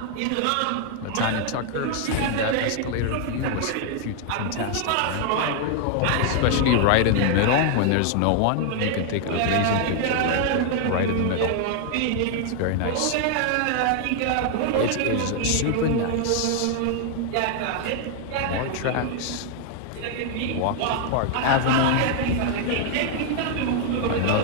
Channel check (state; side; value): different; both; correlation 0.00